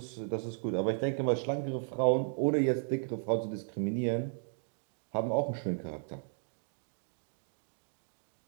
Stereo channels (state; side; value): silent; left; digital silence